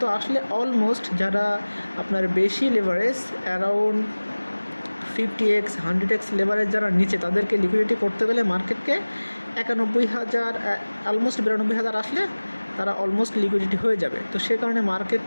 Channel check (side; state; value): both; inverted; correlation -1.00